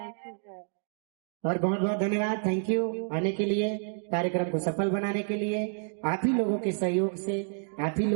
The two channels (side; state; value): left; silent; digital silence